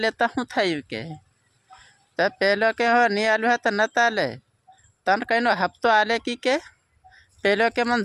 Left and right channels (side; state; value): both; identical; correlation 1.00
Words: લેતા શું થયું કે? તો પેલો કે હો નહીં આલ્યું હોય તો ન ચાલે, તને કઈનો હપ્તો આલે કે? પેલો કે મને